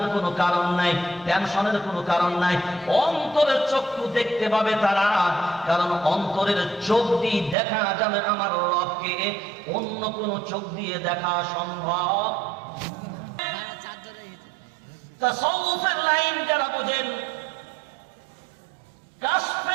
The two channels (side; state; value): left; drops out; at 7.6 s